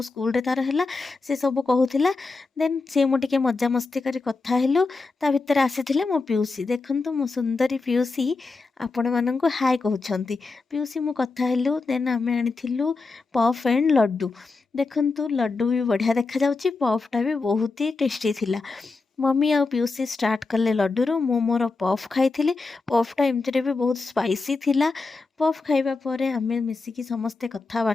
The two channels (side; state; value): right; quieter; 3.9 dB